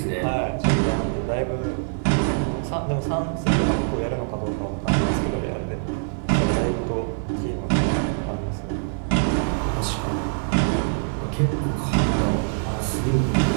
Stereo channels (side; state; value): left; silent; 55 dB below the other